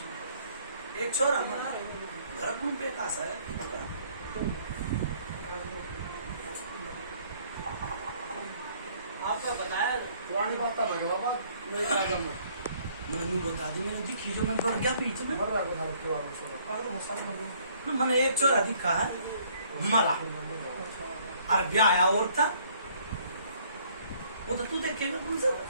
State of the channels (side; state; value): both; inverted; correlation -0.61